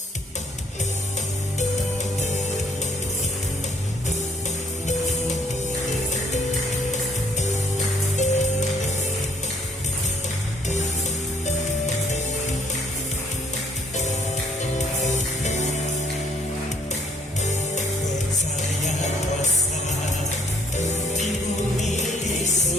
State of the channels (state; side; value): normal; both; correlation 0.65